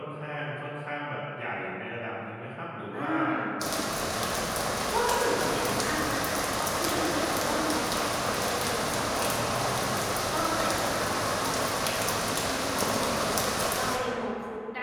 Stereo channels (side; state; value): both; identical; correlation 1.00